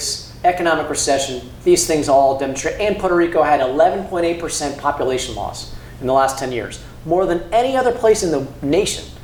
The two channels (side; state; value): both; identical; correlation 1.00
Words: economic recession, these things all demonstrate. And Puerto Rico had 11.8% population loss in the last 10 years, more than any other place in the nation.